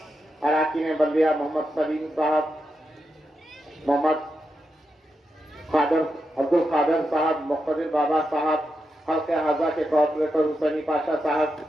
अराकीन बल्दिया मोहम्मद सलीम साहब, मोहम्मद खादर अब्दुल खादर साहब, मुक़्तदिर बाबा साहब, हल्के हाजा के कॉर्पोरेटर हुसैनी पाशा साहब,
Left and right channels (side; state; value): both; normal; correlation 0.86